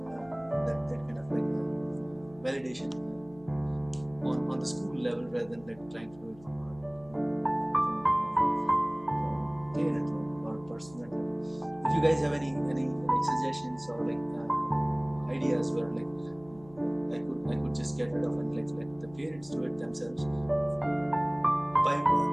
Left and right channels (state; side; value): noise; left; hum, 23 dB below the sound